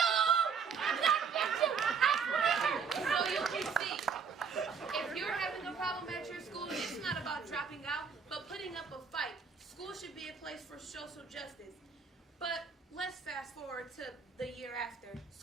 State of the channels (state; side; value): quieter; left; 5.9 dB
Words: I'm gonna get you. I swear. So you can see, if you're having a problem at your school, it's not about dropping out, but putting up a fight. School should be a place for social justice. But let's fast forward to the year after.